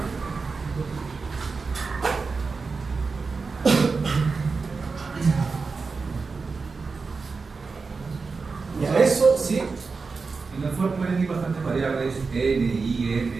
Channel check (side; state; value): left; quieter; 4.5 dB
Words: Ya, eso sí. En el for pueden ir bastantes variables, n,